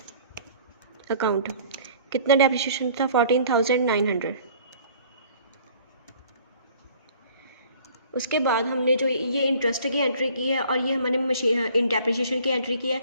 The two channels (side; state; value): both; inverted; correlation -0.52